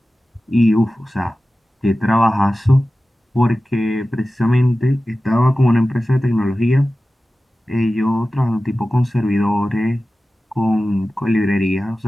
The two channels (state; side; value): normal; both; correlation 0.95